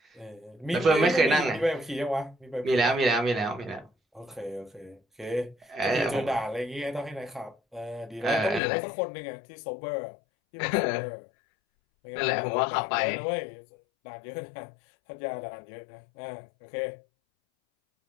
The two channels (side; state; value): right; drops out; at 8.6 s